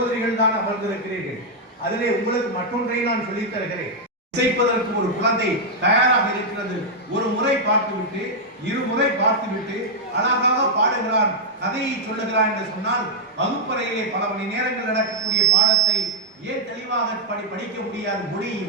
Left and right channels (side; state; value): both; normal; correlation -0.03